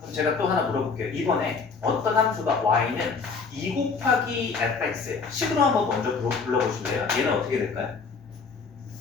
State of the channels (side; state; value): right; quieter; 4.9 dB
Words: 제가 또 하나 물어볼게요. 이번에 어떤 함수가 y는 2 곱하기 fx예요. 식으로 한번 먼저 불러보실래요? 얘는 어떻게 될까요?